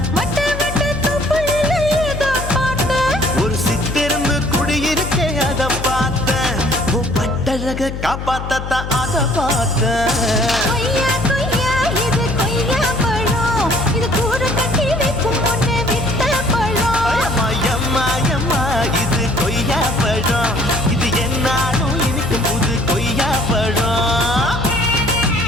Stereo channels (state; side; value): noise; left; hum, 7 dB below the sound